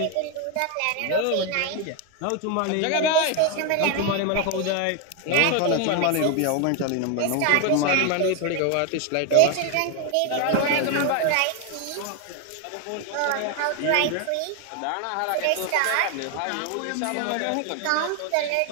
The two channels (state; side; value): different; both; correlation 0.01